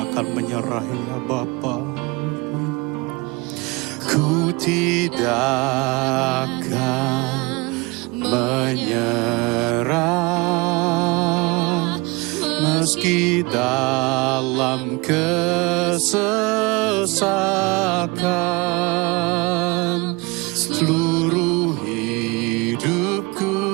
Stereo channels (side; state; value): left; quieter; 25.9 dB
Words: akan menyerah ya Bapa. Ku tidak akan menyerah meski dalam kesesakan, seluruh hidupku